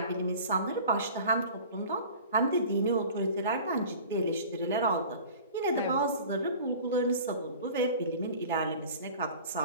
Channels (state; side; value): inverted; both; correlation -0.42